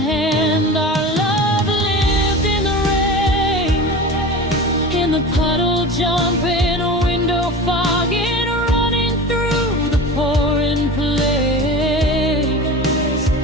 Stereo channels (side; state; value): both; normal; correlation 0.32